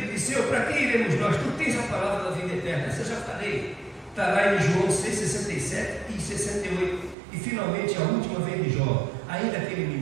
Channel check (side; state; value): left; drops out; at 7.2 s